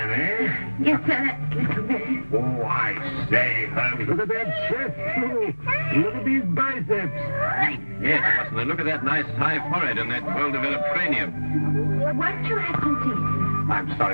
eh? Yes, sir, that's little Billy. Oh, I say, Holmes, look at that chest, too. Look at these biceps. Yes, Watson, and look at that nice high forehead and that well-developed cranium. Won't you have some tea? I'm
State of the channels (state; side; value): inverted; both; correlation -1.00